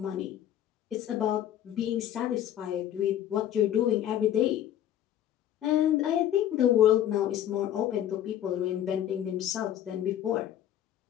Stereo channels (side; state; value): right; quieter; 11.3 dB